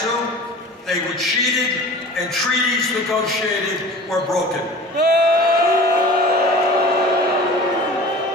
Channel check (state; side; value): normal; both; correlation 0.40